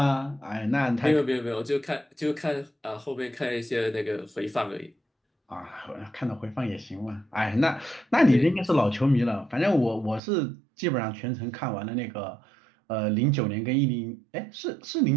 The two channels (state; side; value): drops out; left; at 10.2 s